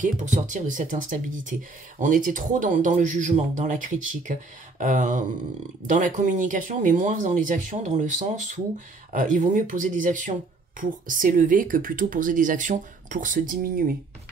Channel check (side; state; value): left; quieter; 3.6 dB